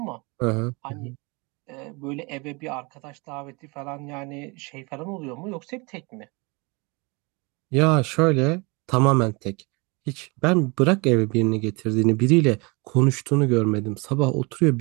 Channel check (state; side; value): quieter; left; 28.3 dB